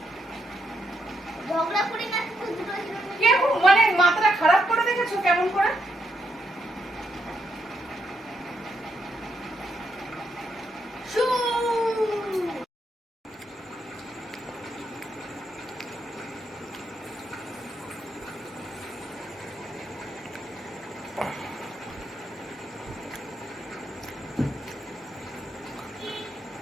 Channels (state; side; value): normal; both; correlation 0.79